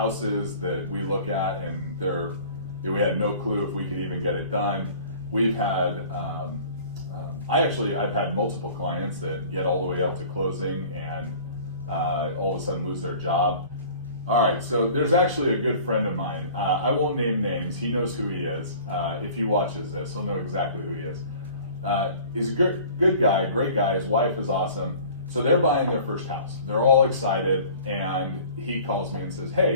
that we look at and we had no clue if we could even get it done. We've had, I've had multiple clients that get all the way up to closing and all of a sudden lose their job. All right, so there's actually a good friend of mine. I won't name names. He knows who he is. If he watches this, he'll know exactly who he is. He's a good guy, great guy. His wife is awesome. So they're buying their first house. They're all excited, and he calls me and says,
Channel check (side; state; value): both; inverted; correlation -0.47